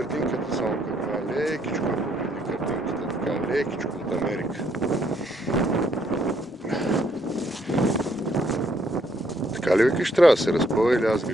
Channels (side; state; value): both; normal; correlation 0.71